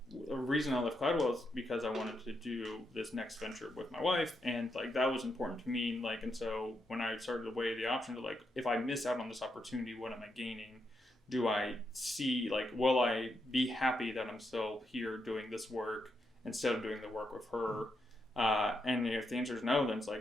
the reason I left Cladwell is because I wanted to do this next venture with my wife, and like that was important to me. Like, and so when I started to weigh the options of like, if I miss out on this opportunity, what am I gaining? Do I see, like, will I be happy that I'm still here doing this work instead of doing the work with her? And if the answer is no, then it's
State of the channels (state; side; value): normal; both; correlation 0.82